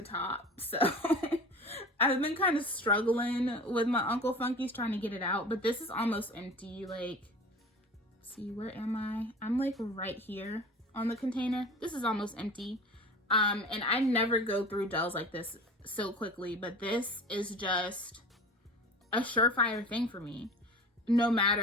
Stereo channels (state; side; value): normal; both; correlation 0.38